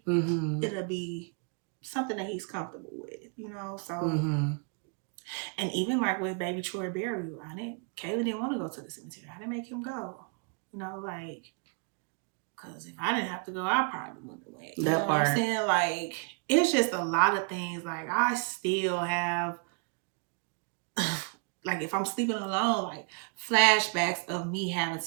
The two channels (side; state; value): left; quieter; 37.3 dB